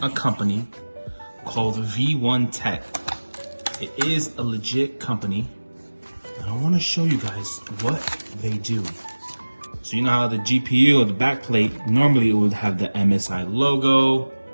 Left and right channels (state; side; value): inverted; both; correlation -1.00